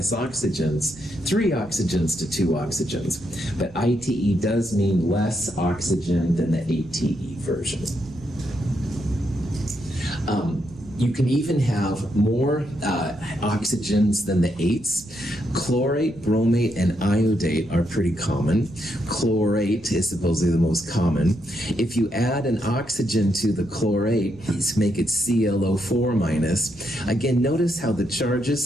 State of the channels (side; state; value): right; noise; rumble, 21 dB below the sound